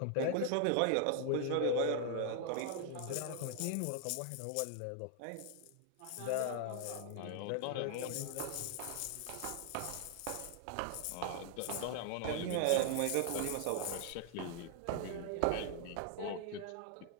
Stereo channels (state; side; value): different; both; correlation 0.00